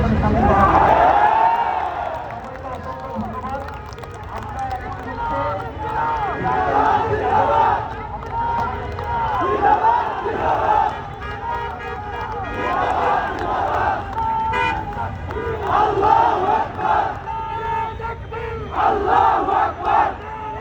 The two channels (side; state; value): both; identical; correlation 1.00